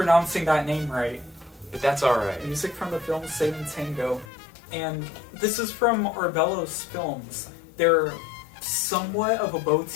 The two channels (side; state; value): right; drops out; at 4.2 s